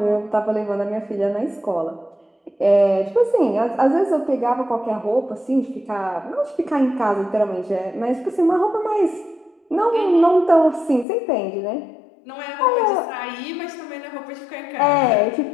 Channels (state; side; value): drops out; right; at 11.1 s